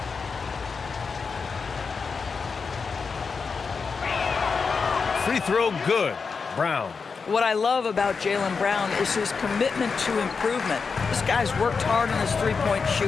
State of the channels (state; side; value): quieter; right; 5.1 dB